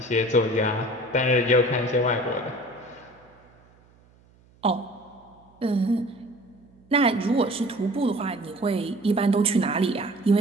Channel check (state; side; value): noise; right; hum, 30 dB below the sound